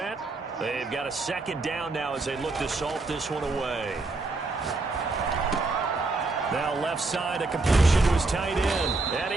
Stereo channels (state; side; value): quieter; left; 3.4 dB